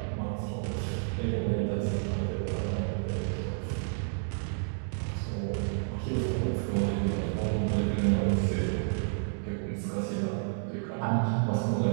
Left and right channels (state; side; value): silent; left; digital silence